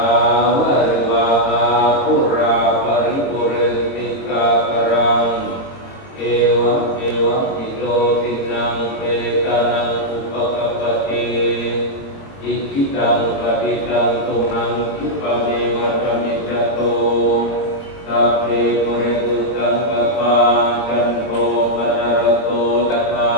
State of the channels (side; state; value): right; late; 22 ms